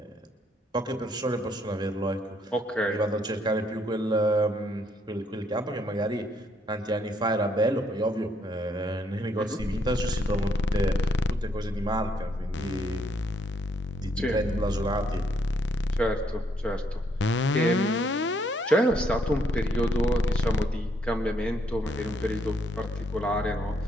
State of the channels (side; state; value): both; normal; correlation 0.71